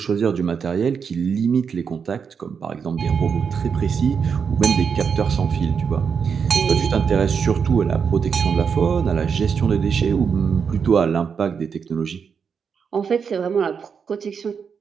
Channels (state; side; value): quieter; left; 6.4 dB